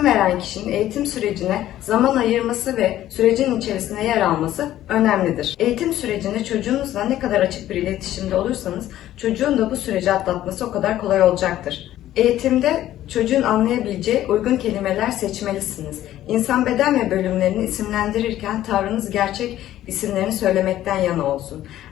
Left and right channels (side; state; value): right; quieter; 13.2 dB